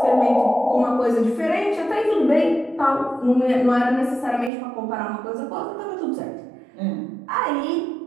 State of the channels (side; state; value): left; drops out; at 4.5 s